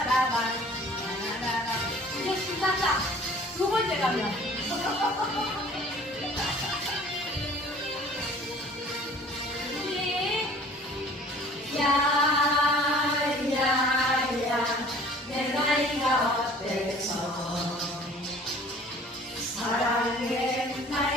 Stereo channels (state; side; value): normal; both; correlation 0.50